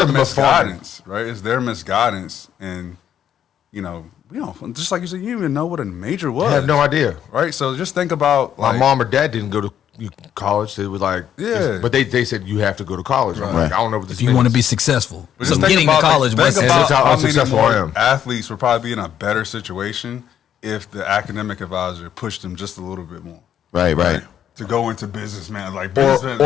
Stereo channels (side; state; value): right; quieter; 9.7 dB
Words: nothing but farming. misguidance, right? It's their misguidance, and we don't just like you said, you didn't even know what a major was. I have no idea. right? So just think about My like, mom or dad didn't go to college. They were like, Yeah. but they said you have to go to college. I'm Right. like, I don't know what this if you want to be means. successful. But So just think getting to about, college think was about That's how how many unsuccessful more I am. athletes would probably be in a better situation if the academic advisor pushed them just a little bit more. Right. To go into business, man. Like or business,